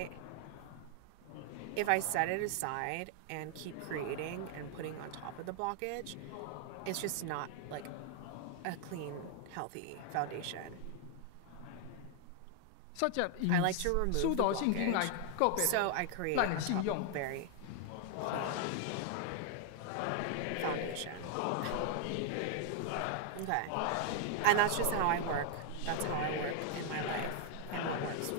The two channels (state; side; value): different; both; correlation 0.00